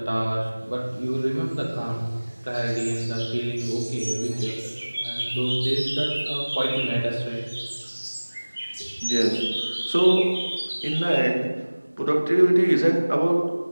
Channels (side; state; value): both; inverted; correlation -1.00